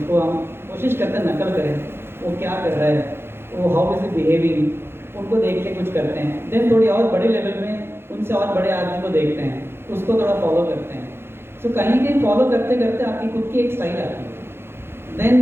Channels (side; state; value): left; late; 0.11 ms